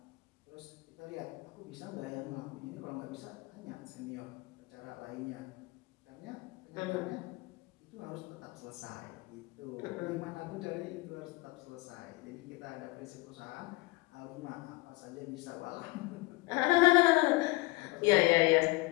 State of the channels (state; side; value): quieter; right; 23.3 dB